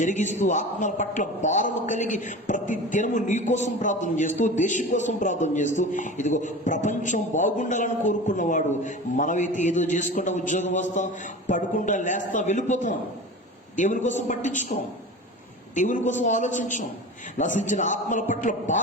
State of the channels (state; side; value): normal; both; correlation 0.33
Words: ఆత్మల పట్ల భారము కలిగి ప్రతి దినము నీ కోసం ప్రార్థన చేస్తూ, దేశం కోసం ప్రార్థన చేస్తూ, ఇదిగో ప్రపంచం బాగుండాలని కోరుకున్నవాడు. మనమైతే ఏదో చేసుకుంటా ఉద్యోగం వస్తాం, పడుకుంటా లేస్తాం, వెళ్ళిపోతాం. దేవుని కోసం పట్టించుకోం, దేవుని కోసం ఆలోచించాం. నశించిన ఆత్మల పట్ల